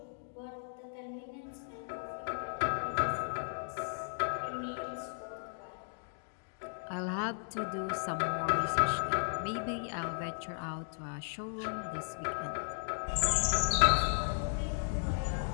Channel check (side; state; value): right; silent; digital silence